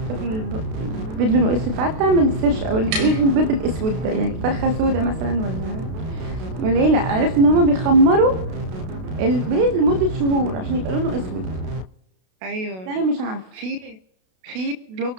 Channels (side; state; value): left; late; 32 ms